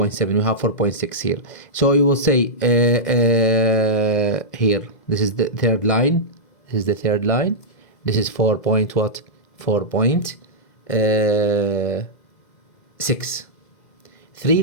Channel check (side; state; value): right; late; 2.0 ms